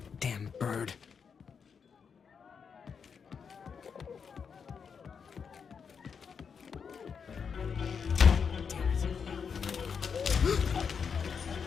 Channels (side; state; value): right; quieter; 6.3 dB